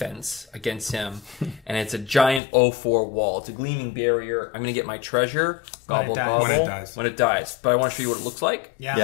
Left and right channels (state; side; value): drops out; right; at 2.4 s